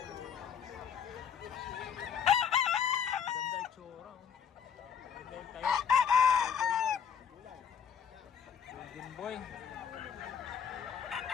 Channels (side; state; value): right; quieter; 7.5 dB